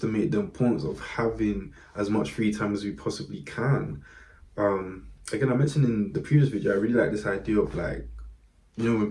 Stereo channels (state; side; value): identical; both; correlation 1.00